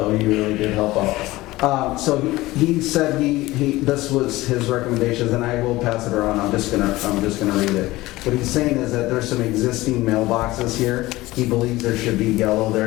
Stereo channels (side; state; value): right; quieter; 18.7 dB